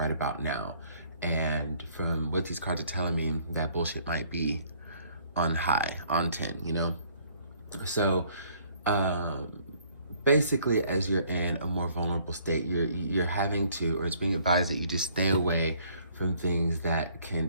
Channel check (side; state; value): both; inverted; correlation -0.61